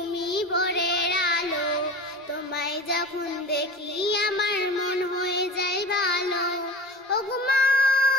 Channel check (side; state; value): both; normal; correlation 0.35